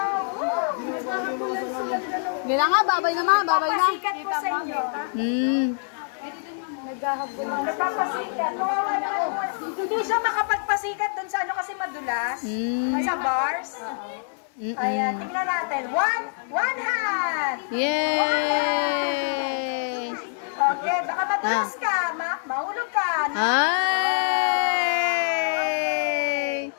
Gila nga, babay na mga, babay na. Pasikat po sa inyo. Nagpapasikat. Hindi siya makapagpasikat dun sa ano kasi madulas. Sa bars. Ayan, tingnan natin. One hand! Yay! Okay, baka madulas ka. Mahulog ka. Ay!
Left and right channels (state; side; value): silent; right; 62 dB below the other